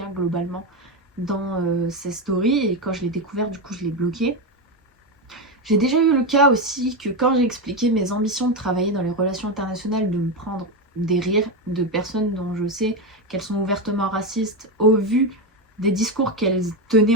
globalement dans ses stories, et quand je l'ai découvert, du coup je l'ai bloqué. J'ai déjà eu le cas aussi que quand j'ai expliqué mes ambitions de travailler dans les relations internationales, de me prendre des rires de personnes dont je sais qu'elles sont ouvertement racistes au vu des discours qu'elles tenaient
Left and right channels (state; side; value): normal; both; correlation 0.12